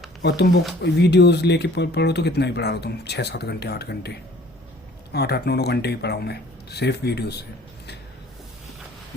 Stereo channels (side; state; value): both; normal; correlation 0.52